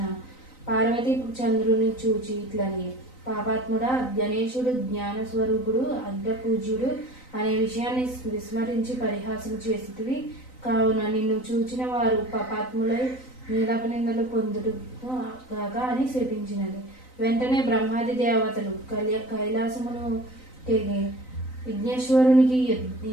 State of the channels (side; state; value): right; late; 3.9 ms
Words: పార్వతి చంద్రుని చూచి ఇట్లని, పాపాత్ముడా, గణేశుడు జ్ఞానస్వరూపుడు, అగ్రపూజ్యుడు అనే విషయాన్ని విస్మరించి పరిహాసం చేసితివి. కావున నిన్ను చూచిన వారు పాపాత్ములై నీలాపనిందలు పొందుడు గాక అని శపించినది. వెంటనే బ్రహ్మాది దేవతలు కైలాసమును తెగి విఘ్నేశ్వరునికి